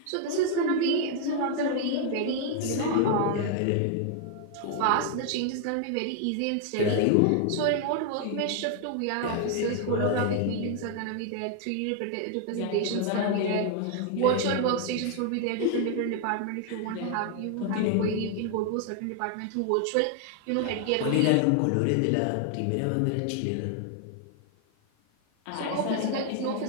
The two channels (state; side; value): different; both; correlation 0.00